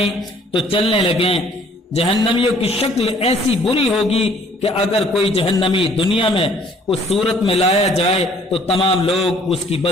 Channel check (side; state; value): both; normal; correlation 0.58